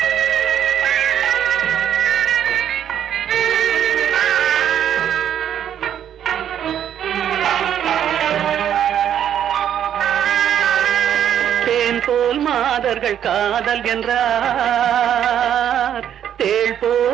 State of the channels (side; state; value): left; quieter; 9.8 dB